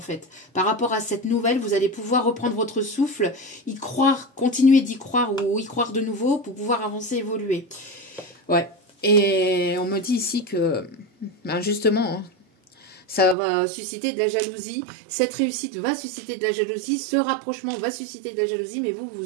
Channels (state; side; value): drops out; left; at 13.4 s